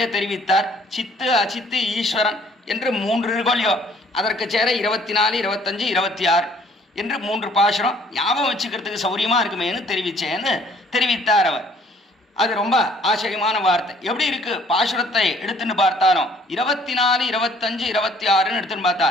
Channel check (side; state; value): both; normal; correlation 0.58